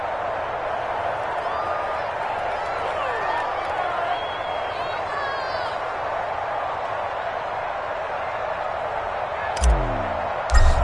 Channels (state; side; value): identical; both; correlation 1.00